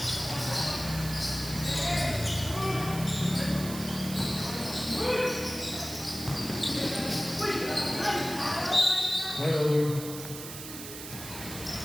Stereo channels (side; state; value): right; noise; hiss, 10 dB below the sound